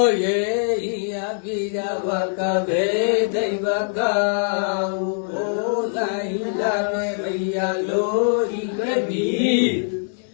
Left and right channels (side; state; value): right; silent; digital silence